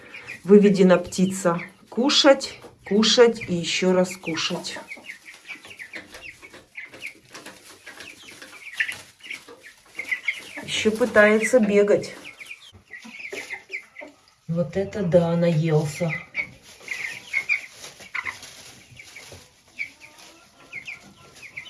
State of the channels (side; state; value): both; identical; correlation 1.00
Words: птица. Кушать, кушать и еще раз кушать. Еще пытается бегать. Вот это да, наелся.